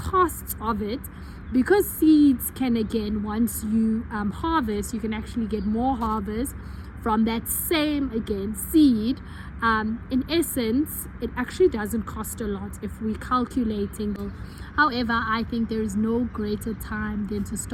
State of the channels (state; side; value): identical; both; correlation 1.00